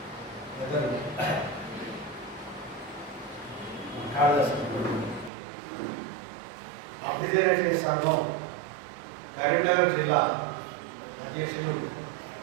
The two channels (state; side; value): drops out; left; at 5.3 s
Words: పెద్దలు కాళిదాసు అభ్యుదయ సంఘం కరీంనగర్ జిల్లా అధ్యక్షులు